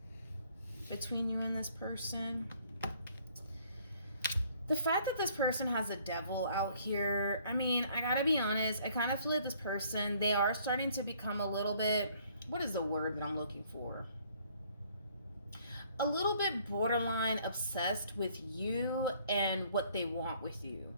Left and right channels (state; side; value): inverted; both; correlation -0.61